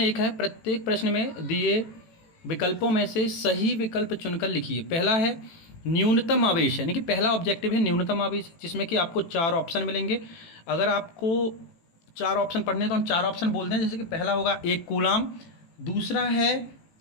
है, प्रत्येक प्रश्न में दिए विकल्पों में से सही विकल्प चुनकर लिखिए। पहला है न्यूनतम आवेश, यानी कि पहला ऑब्जेक्टिव है न्यूनतम आवेश, जिसमें कि आपको 4 ऑप्शन मिलेंगे। अगर आपको 4 ऑप्शन पढ़ने तो हम 4 ऑप्शन बोलते हैं, जैसे कि पहला होगा 1 कूलाम, दूसरा है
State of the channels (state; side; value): late; right; 18 ms